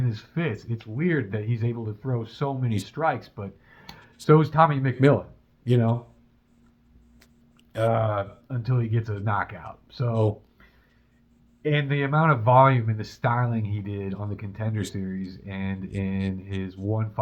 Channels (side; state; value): both; identical; correlation 1.00